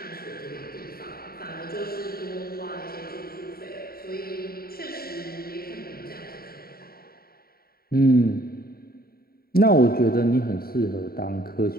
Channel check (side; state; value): right; late; 0.44 ms